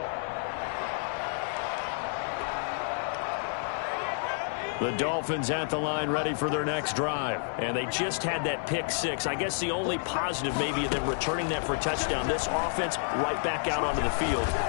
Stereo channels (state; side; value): silent; right; digital silence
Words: The Dolphins at the line ready for their next drive. And they just had that pick-6. I guess the only positive maybe of them returning that for a touchdown. This offense right back out onto the field